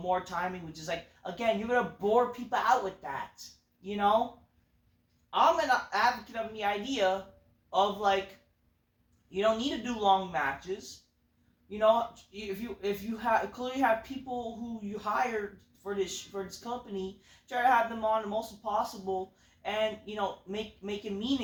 timing, which is like, again, you're gonna bore people out with that, I'm an advocate of the idea of like, you don't need to do long matches. If you clearly have people who you hired for this company, try to have them on the most possible, and make it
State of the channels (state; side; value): identical; both; correlation 1.00